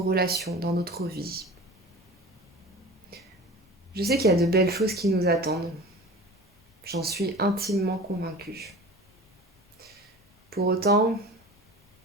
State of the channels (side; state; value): both; normal; correlation 0.38